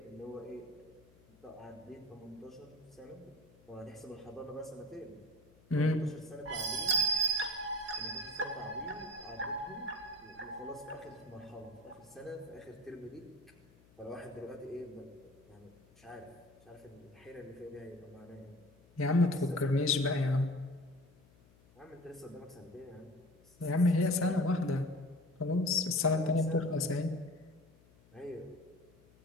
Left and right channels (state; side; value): noise; left; hum, 27 dB below the sound